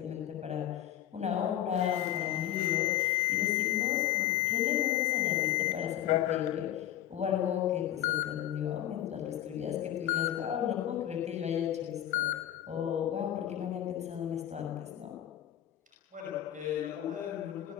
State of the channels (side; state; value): right; quieter; 12.0 dB